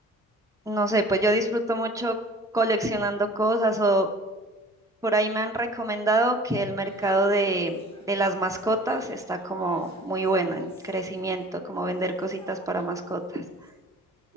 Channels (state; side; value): normal; both; correlation 0.47